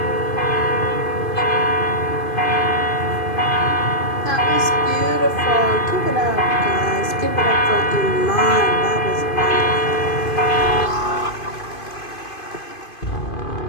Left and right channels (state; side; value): late; right; 2.5 ms